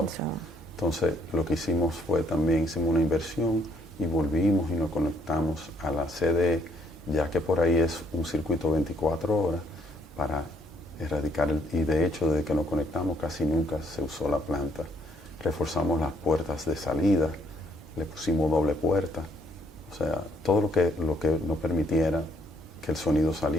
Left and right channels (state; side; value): normal; both; correlation 0.68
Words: Entonces lo que hicimos fue también hicimos una inversión y volvimos y nos conectamos a la CDE, ya que por ahí es un circuito 24 horas para erradicar y de hecho desde que nos conectamos casi nunca se usó la planta. Reforzamos las puertas de salida, le pusimos doble puerta, o sea, todo lo que nos permitiera que el sonido